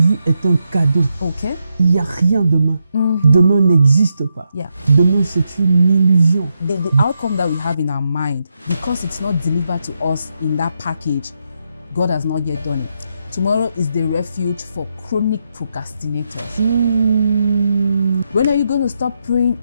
est un cadeau. Okay? Il n'y a rien demain. Demain n'existe pas. Yeah. Demain, c'est une illusion. The outcome that we have in our mind, because it's not delivered to us in that package, God has not yet done it. Tomorrow is the refuge for chronic procrastinators. When are you going to stop praying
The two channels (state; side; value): inverted; both; correlation -0.83